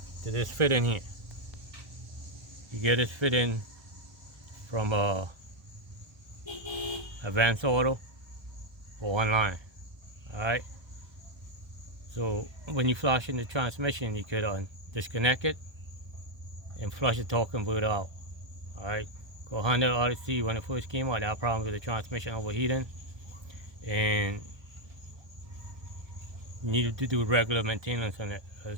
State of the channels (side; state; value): left; late; 1.2 ms